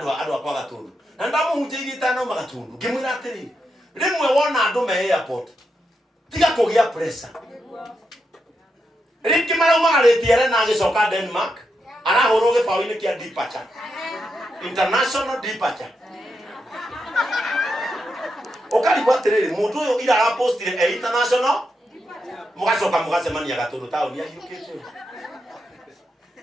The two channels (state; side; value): normal; both; correlation 0.84